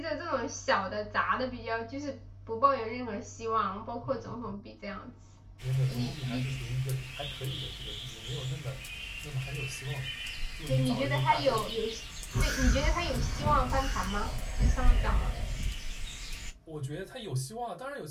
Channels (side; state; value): both; identical; correlation 1.00